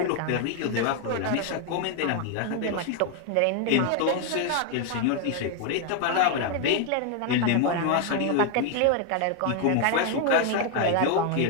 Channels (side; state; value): both; different; correlation 0.00